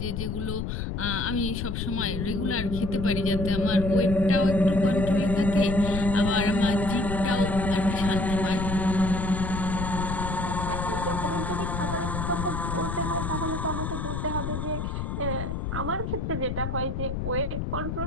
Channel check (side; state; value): left; noise; rumble, 3 dB below the sound